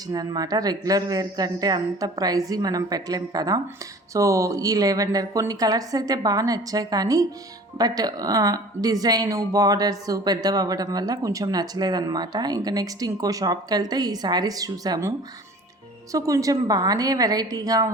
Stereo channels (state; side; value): normal; both; correlation 0.45